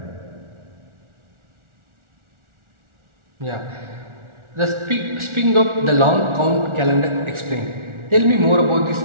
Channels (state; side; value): late; left; 1.4 ms